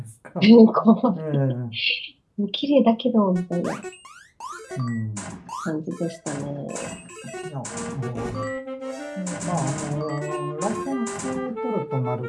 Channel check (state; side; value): identical; both; correlation 1.00